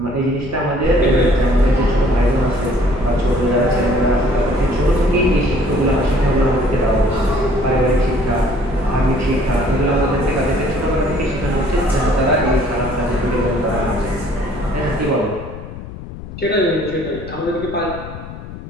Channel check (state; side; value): noise; left; rumble, 12 dB below the sound